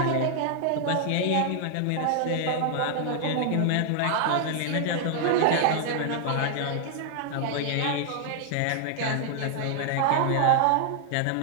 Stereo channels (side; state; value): both; different; correlation 0.00